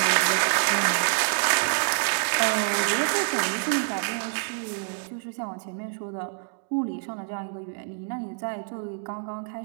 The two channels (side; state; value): left; silent; digital silence